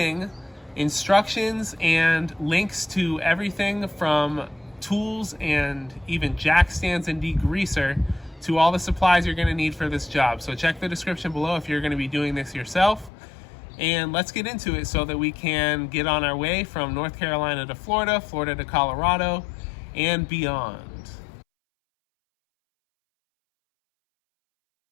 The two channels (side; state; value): right; drops out; at 13.1 s